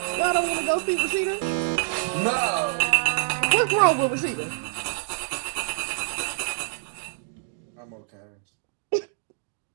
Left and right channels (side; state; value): left; silent; digital silence